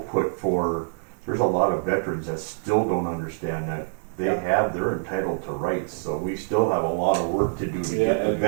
for, there's a lot of veterans that still don't understand that they're entitled to rights, so we still have a lot of work to do to get the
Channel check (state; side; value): silent; left; digital silence